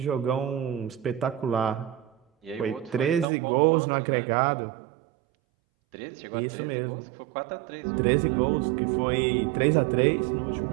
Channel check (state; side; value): drops out; left; at 3.2 s